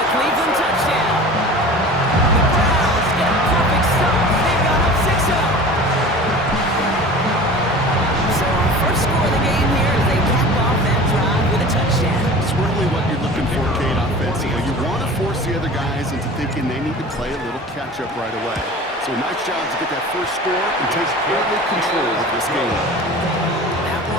the Cleveland touchdown. The Browns get a perfect start. They've got up 6-0. So our first score of the game here is they cap off that drive with a touchdown. It's really what you're looking for, Kate, offensively. You want to force the other guys into thinking they need to play a little catch-up right away. So nice job to get that first score and take early control of this game. That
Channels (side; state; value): both; normal; correlation 0.39